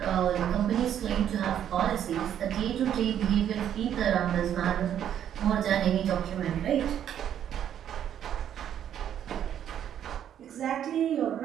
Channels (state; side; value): quieter; left; 10.0 dB